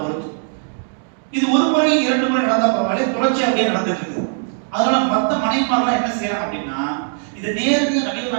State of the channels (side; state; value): left; silent; digital silence